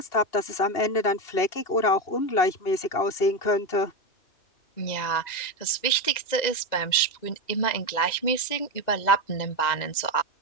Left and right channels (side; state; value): right; late; 2.1 ms